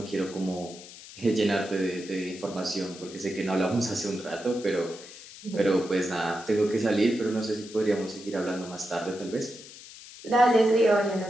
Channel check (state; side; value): noise; left; hiss, 17 dB below the sound